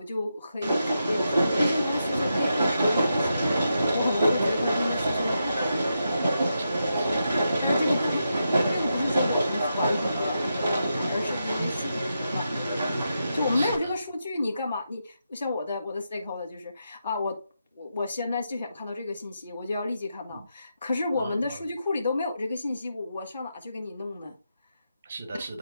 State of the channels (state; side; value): inverted; both; correlation -0.85